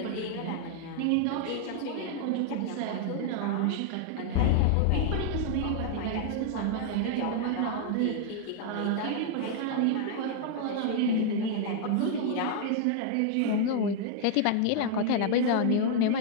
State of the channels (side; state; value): both; different; correlation -0.01